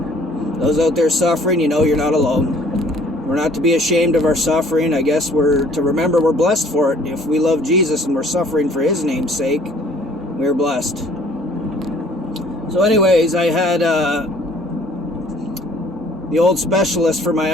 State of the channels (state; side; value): normal; both; correlation 0.56